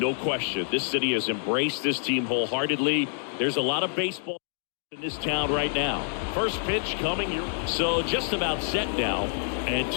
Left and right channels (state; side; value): silent; right; digital silence